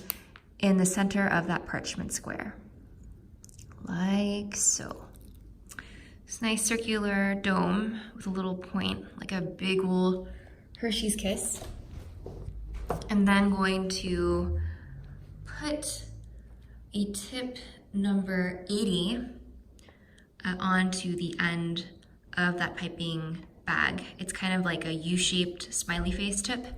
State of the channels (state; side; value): identical; both; correlation 1.00